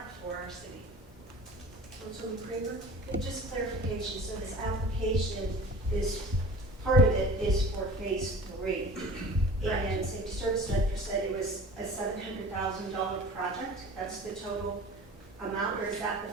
for our city. Councilman Kramer? Okay, just clarification, so this application is, part of it is for phase 3. Correct. And Safety Service Director said it was a $700,000 project, that's the total amount, or is that the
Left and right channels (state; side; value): normal; both; correlation 0.42